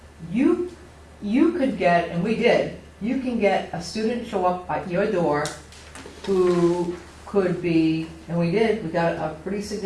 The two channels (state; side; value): identical; both; correlation 1.00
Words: you could get, and we did, you can get a student show up at your door who could be, and we did, we got a pretty